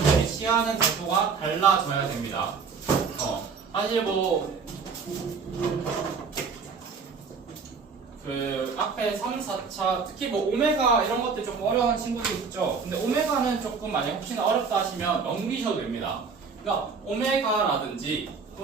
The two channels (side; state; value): left; quieter; 5.3 dB